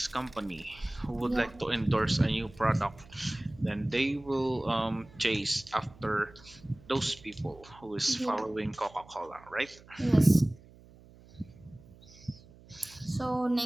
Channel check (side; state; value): right; noise; hum, 23 dB below the sound